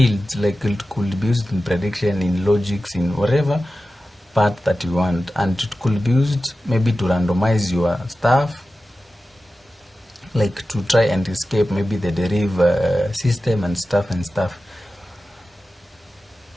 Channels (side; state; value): both; normal; correlation 0.94